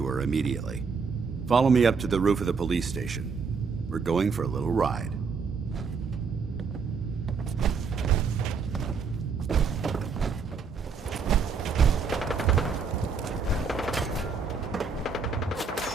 her immediately. Follow me up to the roof of the police station. We're going for a little ride.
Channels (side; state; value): left; quieter; 5.3 dB